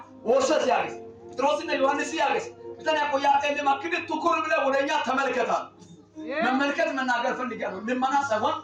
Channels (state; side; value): identical; both; correlation 1.00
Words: ወሰስ ያገስ ትሮስነ ዮሐንስ ያገስ ቢታኔ ቆያቴ ለማክድ ትኩር ብለ ወደኛ ተመልከታል። መመልከት መናገር ፈልጋለሁ። ልማና ሳይሆን